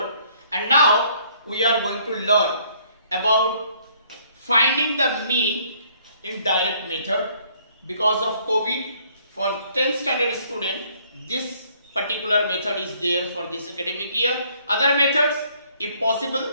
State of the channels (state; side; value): inverted; both; correlation -0.63